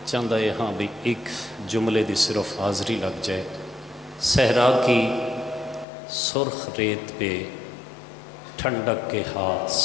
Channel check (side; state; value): right; drops out; at 5.9 s